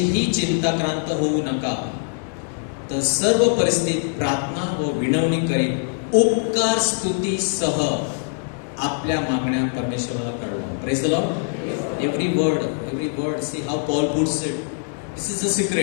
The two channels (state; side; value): silent; right; 56 dB below the other